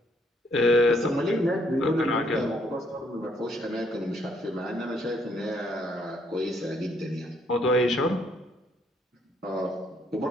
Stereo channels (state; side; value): normal; both; correlation 0.70